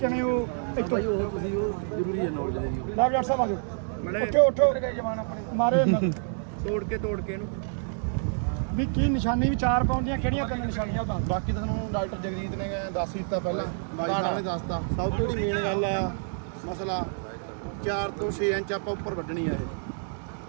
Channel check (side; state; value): left; silent; 59 dB below the other